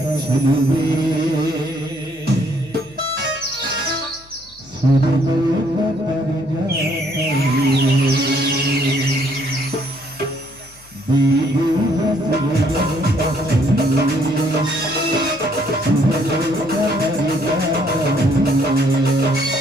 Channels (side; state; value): left; noise; hum, 26 dB below the sound